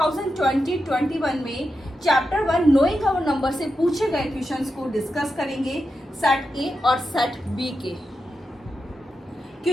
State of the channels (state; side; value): normal; both; correlation 0.88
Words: में चैप्टर 1 नोइंग आवर नंबर से पूछे गए क्वेश्चंस को डिस्कस करेंगे सेट ए और सेट बी के।